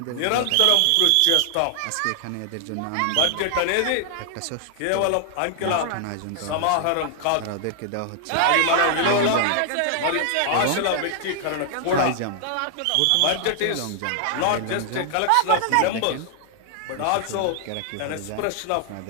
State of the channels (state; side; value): different; both; correlation 0.00